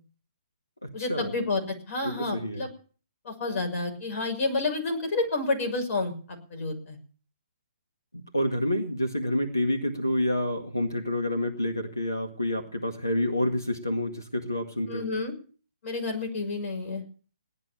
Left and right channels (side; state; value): both; inverted; correlation -0.70